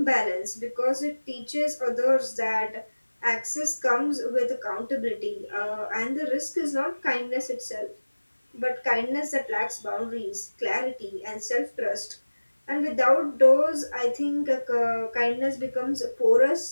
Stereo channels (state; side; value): inverted; both; correlation -1.00